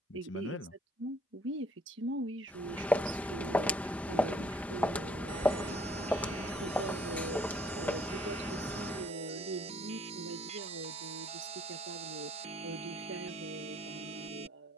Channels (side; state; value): both; normal; correlation 0.62